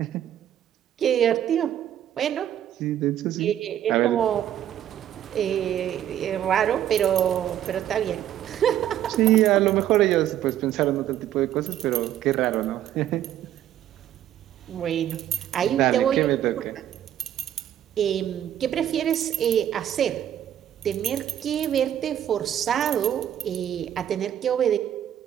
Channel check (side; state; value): left; quieter; 11.1 dB